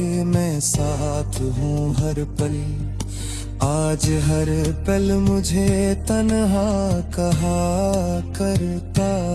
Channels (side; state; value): both; identical; correlation 1.00